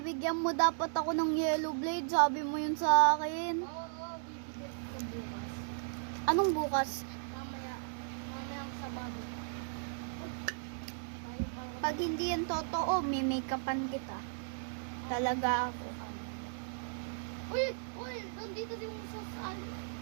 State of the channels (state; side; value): silent; left; digital silence